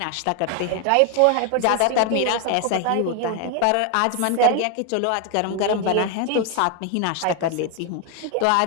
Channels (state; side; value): different; both; correlation 0.00